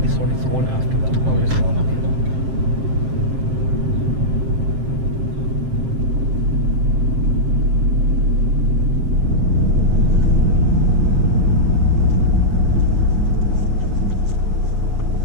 this one, it's the one after that. Oh, it's the one after that.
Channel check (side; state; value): left; late; 7.6 ms